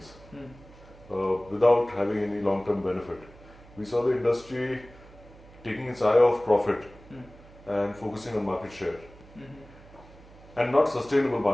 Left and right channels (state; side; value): noise; right; hum, 22 dB below the sound